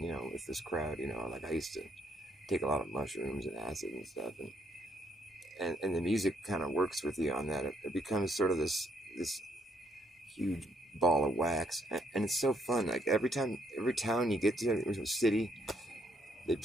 you know, with this crowd, you know. Like, I used to take a lot of mushrooms and acid and stuff, and the music kind of works with you on that. It becomes sort of this huge ball of wax, and it's so fun. Like, every town you get to, every city, they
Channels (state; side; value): normal; both; correlation 0.71